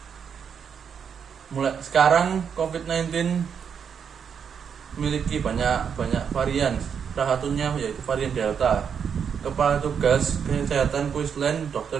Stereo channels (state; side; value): quieter; left; 7.2 dB